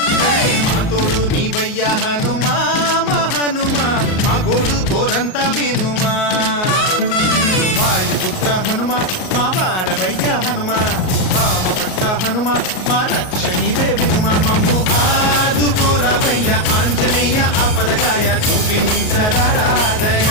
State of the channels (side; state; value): right; late; 38 ms